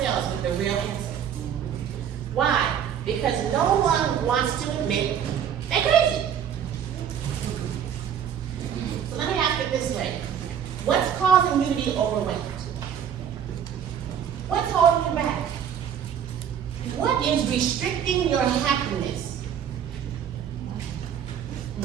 with the real answer. Why? Because no one wants to admit they're crazy. So let me ask it this way. What's causing you to be overwhelmed? What's holding you back? What is restricting your happiness?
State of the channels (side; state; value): left; quieter; 8.7 dB